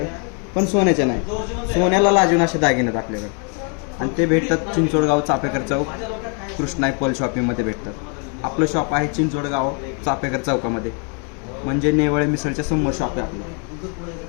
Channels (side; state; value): right; quieter; 39.2 dB